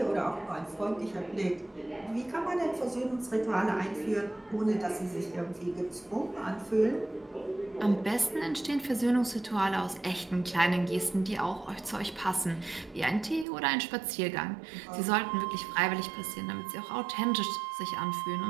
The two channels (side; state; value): left; drops out; at 13.5 s